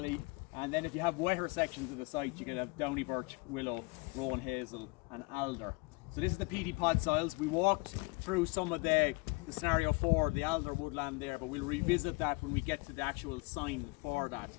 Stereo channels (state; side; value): quieter; right; 27.2 dB